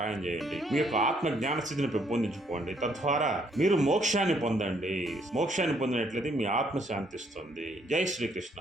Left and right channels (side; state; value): both; normal; correlation 0.69